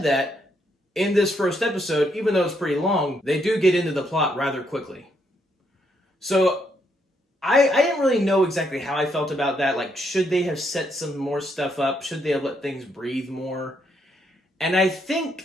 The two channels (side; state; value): both; normal; correlation 0.75